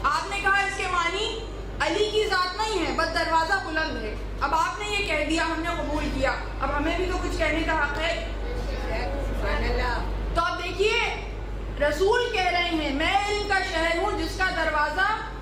آپ نے کہا اس کے معنی علی کی ذات نہیں ہے، بس دروازہ بلند ہے۔ اب آپ نے یہ کہہ دیا، ہم نے قبول کیا، اب ہمیں بھی تو کچھ کہنے کا حق ہے۔ تو اب دیکھیے رسول کہہ رہے ہیں میں علم کا شہر ہوں جس کا دروازہ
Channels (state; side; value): identical; both; correlation 1.00